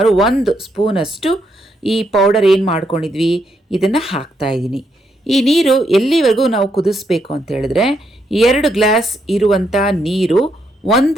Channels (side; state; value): both; normal; correlation 0.77